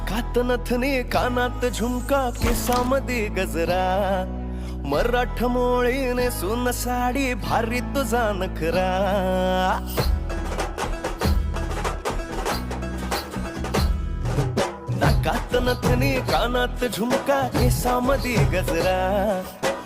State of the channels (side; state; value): both; identical; correlation 1.00